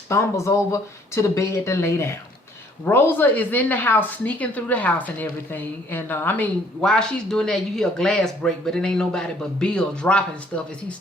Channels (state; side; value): normal; both; correlation 0.61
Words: over to the bed to lay down. Rosa is in the house, sneaking through the house and everything. And I mean, while she's doing that, you hear a glass break, but it ain't nobody but Bill dropping stuff as he's